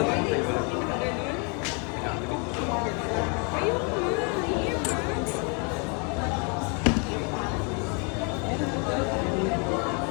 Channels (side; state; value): right; quieter; 35.6 dB